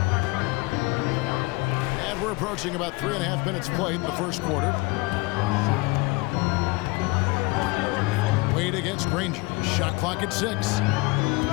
And we're approaching about 3.5 minutes played in the first quarter. Wade against Granger. Shot clock at 6.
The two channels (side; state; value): right; quieter; 24.5 dB